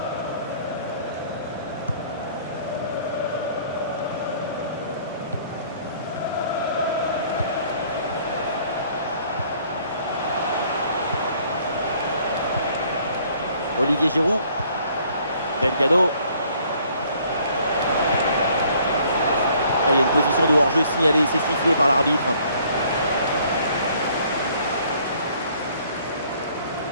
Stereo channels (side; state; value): both; inverted; correlation -0.60